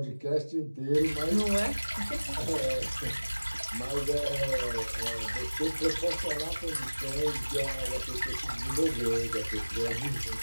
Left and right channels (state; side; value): inverted; both; correlation -1.00